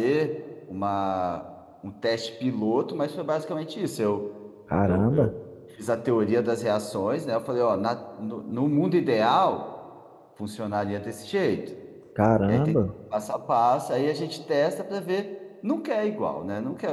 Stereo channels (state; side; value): identical; both; correlation 1.00